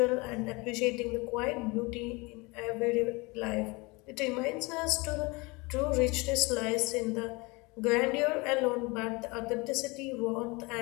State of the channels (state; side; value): quieter; right; 25.8 dB